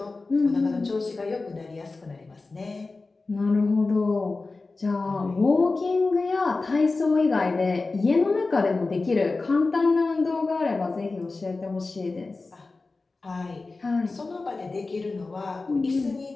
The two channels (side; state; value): right; quieter; 3.7 dB